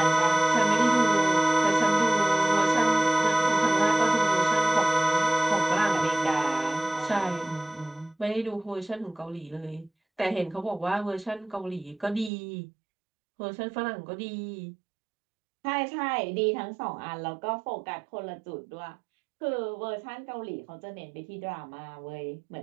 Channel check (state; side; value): drops out; left; at 12.3 s